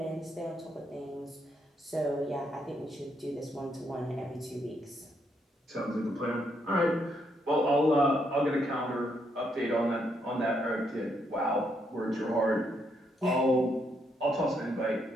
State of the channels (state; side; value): normal; both; correlation 0.76